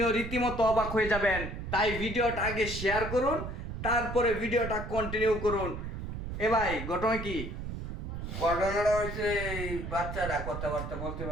রীতিমতো অবাক হয়ে যাবেন। তাই ভিডিওটা আগে শেয়ার করুন, তারপরে ভিডিওটা কন্টিনিউ করুন। এ ভাই, ঘটনা কি? ঘটনাটা হচ্ছে এই বাচ্চাটা কথাবার্তা বলতে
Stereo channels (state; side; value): noise; right; rumble, 6 dB below the sound